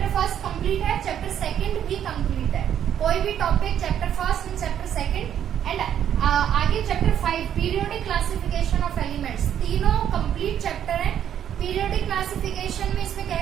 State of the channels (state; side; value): quieter; left; 9.8 dB